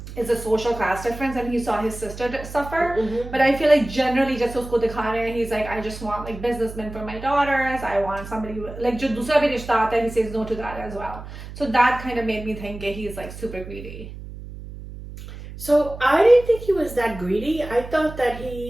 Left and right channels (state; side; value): noise; right; hum, 12 dB below the sound